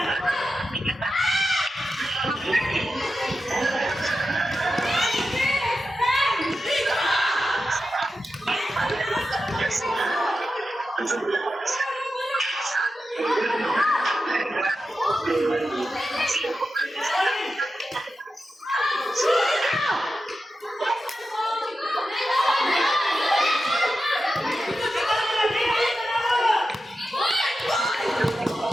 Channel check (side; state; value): both; normal; correlation 0.91